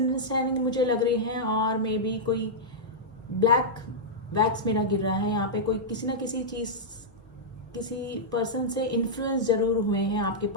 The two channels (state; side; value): normal; both; correlation -0.09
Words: मुझे लग रही है और मे बी कोई ब्लैक वैक्स मेरा गिर रहा है यहाँ पे। कोई किसी ना किसी चीज़, किसी पर्सन से इन्फ्लुएंस जरूर हुए हैं आपके